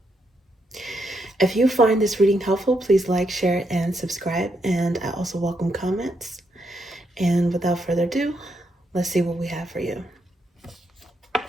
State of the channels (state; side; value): normal; both; correlation 0.79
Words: If you find this reading helpful, please like, share, and subscribe. And I also welcome comments. And without further ado, let's see what we have for you.